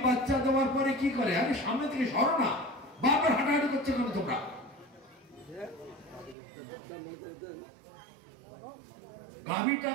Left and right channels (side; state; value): left; drops out; at 6.4 s